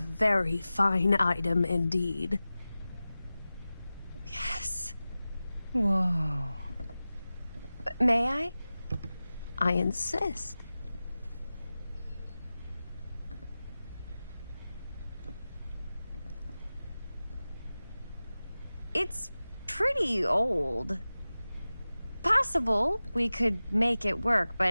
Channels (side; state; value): both; inverted; correlation -0.96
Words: fine item indeed. Yes. Whoa. May I? I insist. It's pretty old. Possible we could make it work,